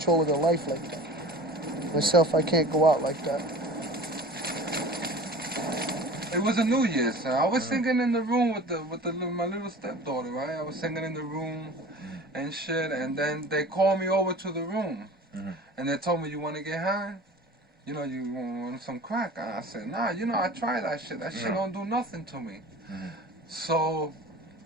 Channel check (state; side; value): normal; both; correlation 0.40